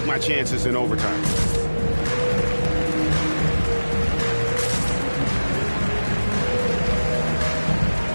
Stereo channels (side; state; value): both; inverted; correlation -1.00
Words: my chances in overtime.